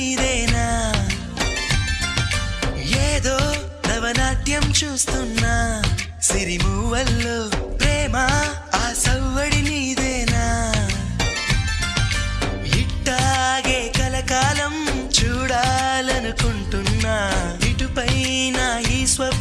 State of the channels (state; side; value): identical; both; correlation 1.00